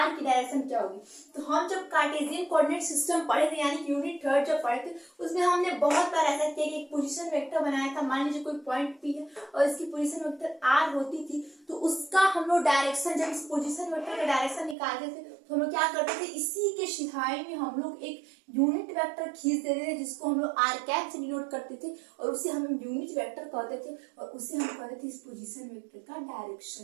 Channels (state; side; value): drops out; left; at 14.8 s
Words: की डायरेक्शन क्या होगी। तो हम जब कार्टेशियन कोऑर्डिनेट सिस्टम पढ़े थे, यानी यूनिट 3 जब पढ़े थे, उसमें हमने बहुत बार ऐसा किया कि एक पोजीशन वेक्टर बनाया था। मान लीजिए कोई पॉइंट पी है और इसकी पोजीशन वेक्टर आर होती थी, तो उसका हम लोग डायरेक्शन, जब इस पोजीशन वेक्टर का डायरेक्शन निकालते थे तो हम लोग क्या करते थे, इसी के सिधाई में हम लोग एक यूनिट वेक्टर खींच देते थे जिसको हम लोग आर कैप से डिनोट करते थे, और उसे हम यूनिट वेक्टर कहते थे, और उसे हम कहते थे इस पोजीशन वेक्टर का